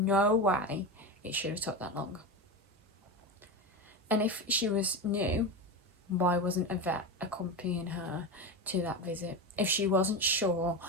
way it should have took that long. And if she was new, why wasn't a vet accompanying her to that visit? If she wasn't sure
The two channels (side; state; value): both; normal; correlation 0.20